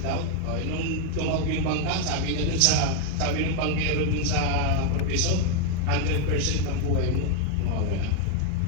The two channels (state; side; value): different; both; correlation 0.00